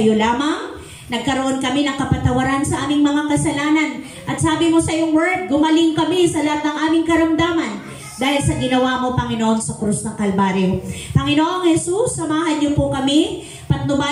lamang. Nagkaroon kami ng kapatawaran sa aming mga kasalanan. At sabi mo sa iyong word, gumaling kami sa lahat ng aming karamdaman dahil sa ginawa mo, Panginoon, sa krus ng Kalbaryo. Panginoong Jesus, samahan niyo po kami,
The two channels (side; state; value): both; identical; correlation 1.00